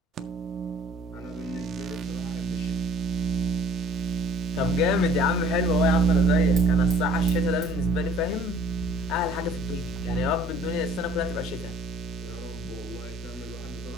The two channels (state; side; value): normal; both; correlation 0.54